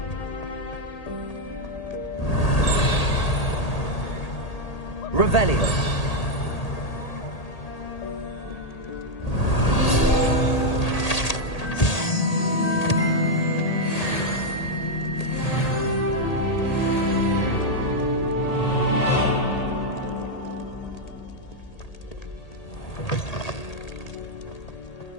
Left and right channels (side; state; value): right; late; 1.8 ms